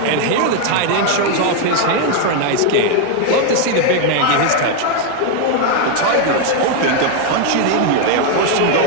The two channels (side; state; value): both; different; correlation 0.01